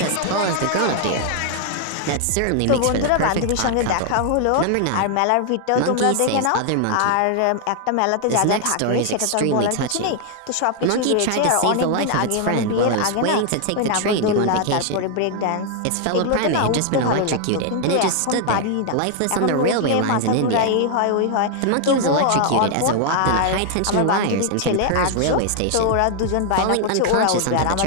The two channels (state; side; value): different; both; correlation 0.00